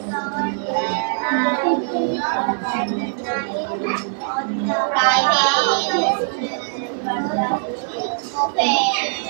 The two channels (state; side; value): silent; left; digital silence